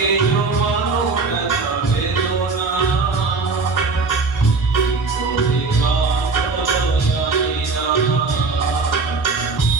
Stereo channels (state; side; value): quieter; left; 4.2 dB